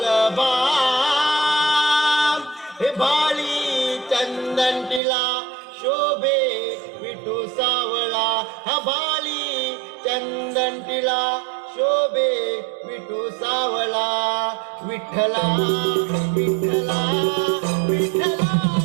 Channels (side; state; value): left; drops out; at 5.0 s